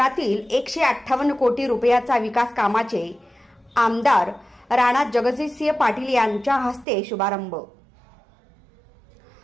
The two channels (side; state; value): left; drops out; at 6.9 s